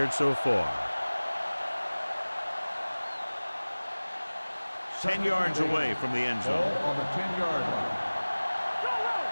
so far. 10 yards away from the end zone. Ball on the 10-yard line.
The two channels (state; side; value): inverted; both; correlation -1.00